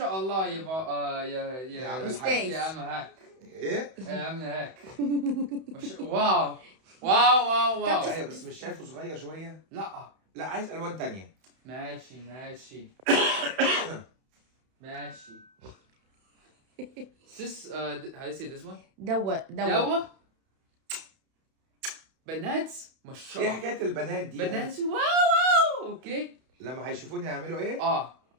الله يا عم أستاذ. يا عم هاك. ايه؟ يا عم هاك. واو. ايوه بس مش شايفه صغير شويه؟ لا عايز الوان تانية. ماشي This how do you say this one? دوا. بنات ما شاء ايه الله. حكايه البنات دي؟ بنات واو اوكي. لما هيشوفوني هيعملوا ايه؟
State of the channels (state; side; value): late; left; 31 ms